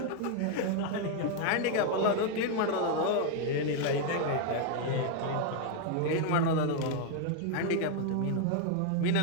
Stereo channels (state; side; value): different; both; correlation 0.00